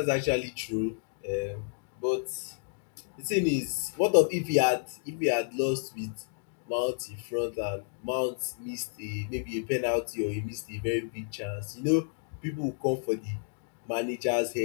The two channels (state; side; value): silent; right; digital silence